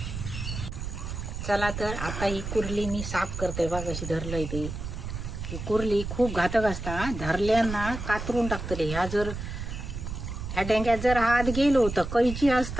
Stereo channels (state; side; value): noise; right; rumble, 6 dB below the sound